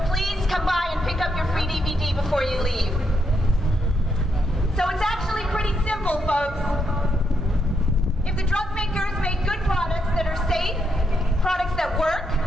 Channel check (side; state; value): both; normal; correlation 0.79